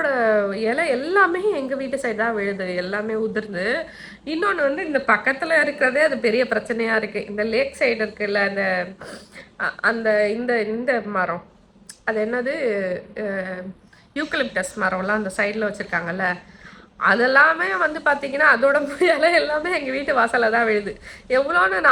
இலை எல்லாமே எங்கள் வீட்டு சைடு தான் விழுது, எல்லாமே உதிர்ந்து. இன்னொன்று வந்து இந்த பக்கத்தில் இருக்கிறதே அது பெரிய பிரச்சனையாக இருக்குது. இந்த லேக் சைடு இருக்குல்ல, அந்த அந்த இந்த இந்த மரம், அது என்னது, யூக்கலிப்டஸ் மரம்லாம் அந்த சைடில் வச்சுருக்காங்கல்ல, அதெல்லாமே வந்து பார்த்திங்கன்னா அதோட இலை எல்லாமே எங்கள் வீட்டு வாசலில் தான் விழுது. எவ்வளோன்னு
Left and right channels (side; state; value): both; identical; correlation 1.00